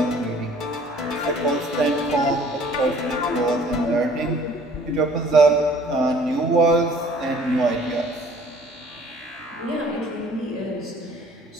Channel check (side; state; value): both; normal; correlation 0.53